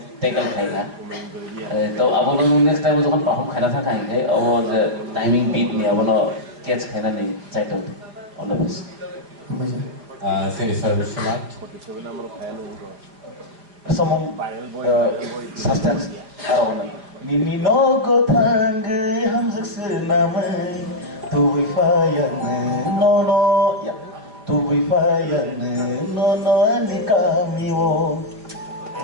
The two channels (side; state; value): left; late; 4.8 ms